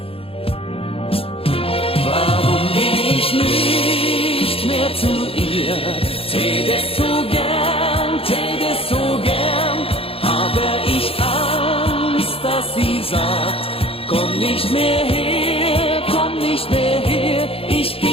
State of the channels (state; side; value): late; right; 0.27 ms